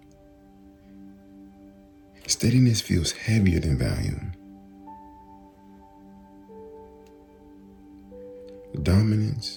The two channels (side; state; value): both; identical; correlation 1.00